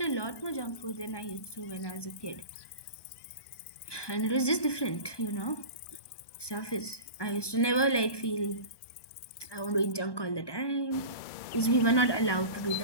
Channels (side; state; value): right; late; 1.2 ms